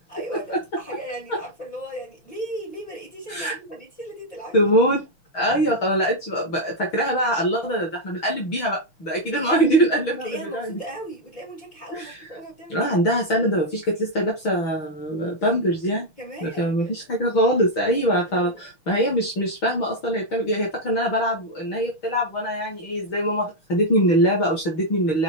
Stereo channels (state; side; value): late; right; 6.3 ms